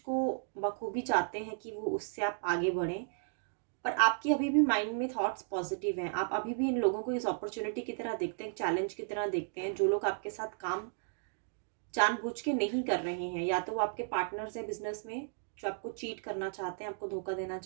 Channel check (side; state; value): left; silent; digital silence